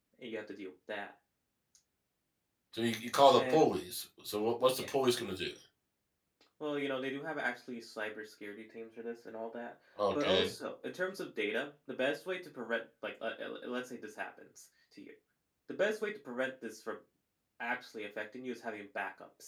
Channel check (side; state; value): both; identical; correlation 1.00